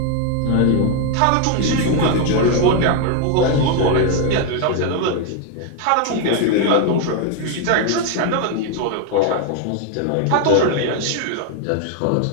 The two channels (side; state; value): both; different; correlation 0.01